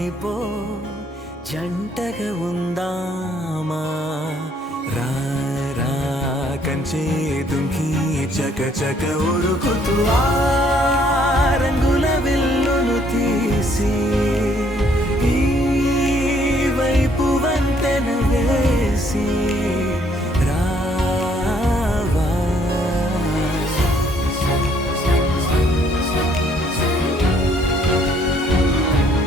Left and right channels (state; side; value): normal; both; correlation 0.65